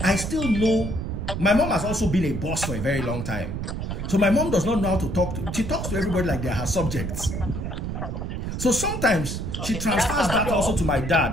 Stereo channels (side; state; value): right; noise; rumble, 4 dB below the sound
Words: I still know my mom has also been a boss for a very long time. So my mom does not know how to talk to. She talks to everybody like they're her subjects. So sometimes she transfers that also to my